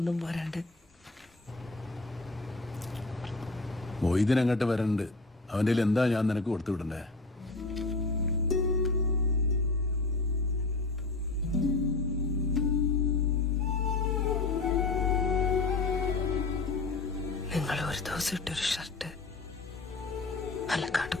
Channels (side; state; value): right; quieter; 3.4 dB